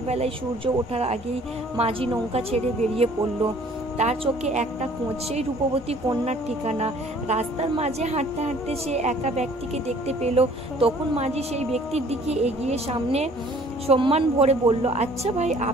সূর্য ওঠার আগেই মাঝি নৌকা ছেড়ে বেরিয়ে পড়ল। তার চোখে একটা খোঁজ, সেই রূপবতী কন্যার ঠিকানা। রাস্তার মাঝে হাঁটতে হাঁটতে সে একা ব্যক্তিকে দেখতে পেল। তখন মাঝি সেই ব্যক্তির দিকে এগিয়ে সামনে সম্মান ভরে বলল, আচ্ছা ভাই,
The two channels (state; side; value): normal; both; correlation 0.55